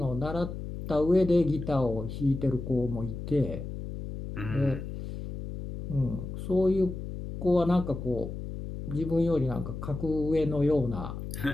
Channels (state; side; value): noise; left; hum, 8 dB below the sound